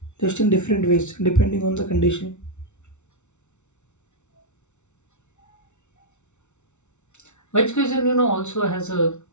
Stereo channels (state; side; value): late; right; 0.83 ms